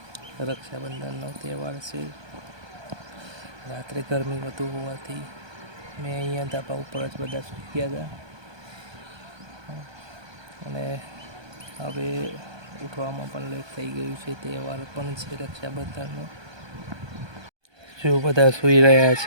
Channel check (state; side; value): late; left; 1.2 ms